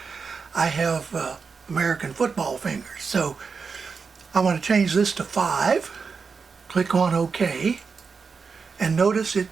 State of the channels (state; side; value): quieter; left; 5.2 dB